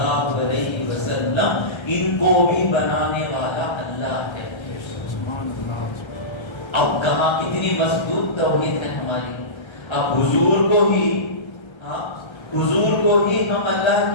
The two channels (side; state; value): right; late; 1.3 ms